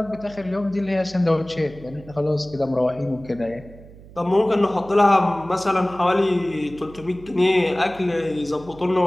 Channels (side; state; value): right; noise; hum, 20 dB below the sound